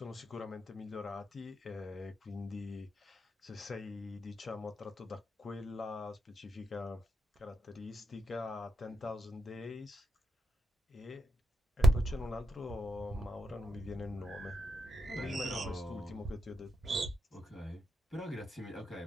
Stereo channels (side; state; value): both; normal; correlation 0.82